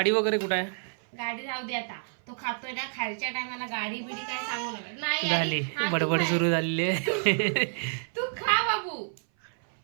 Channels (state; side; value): silent; left; 57 dB below the other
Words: वगैरे कुठे आहे? गाडी राहू दे आता. तो खातोय ना, खायच्या टायमाला गाडी बिडी काय सांगू नका. नाही झाली हा, तू बडबड खाय. सुरू झालेली आहे. तू खा बाबू,